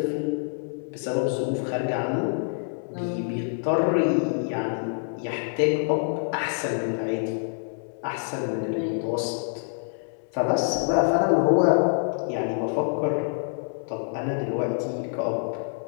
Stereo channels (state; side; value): silent; right; 61 dB below the other